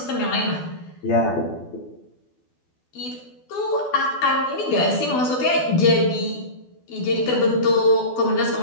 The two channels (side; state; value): right; late; 12 ms